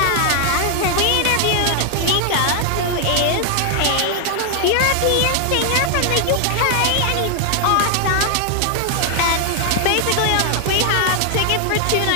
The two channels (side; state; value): both; different; correlation 0.00